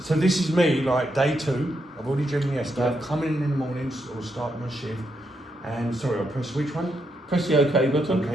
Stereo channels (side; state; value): both; normal; correlation 0.80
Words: this is me, like day 2. I've already driven yesterday. I've come in the mornings or start my shift, and sorry, I'll press which one? Press the OK button.